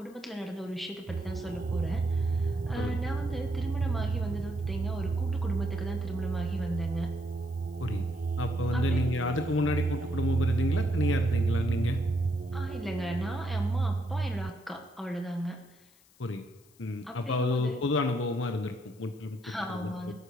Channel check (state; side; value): noise; left; hiss, 29 dB below the sound